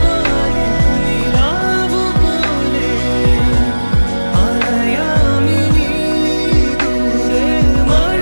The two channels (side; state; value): both; inverted; correlation -1.00